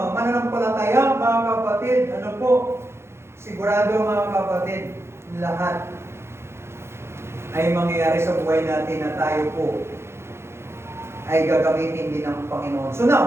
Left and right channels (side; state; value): left; late; 0.12 ms